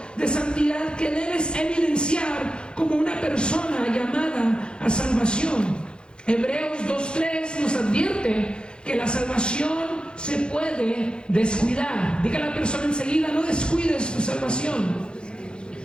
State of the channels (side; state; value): right; late; 0.051 ms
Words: de santidad que debes evidenciar como una persona llamada a salvación. Hebreos 2:3 nos advierte que la salvación se puede descuidar. Diga a la persona enseguida: no descuides tu salvación.